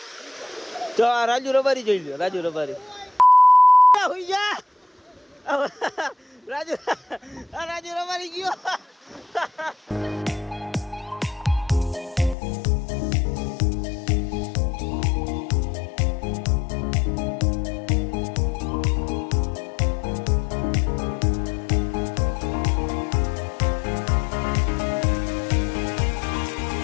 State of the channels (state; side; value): drops out; right; at 12.4 s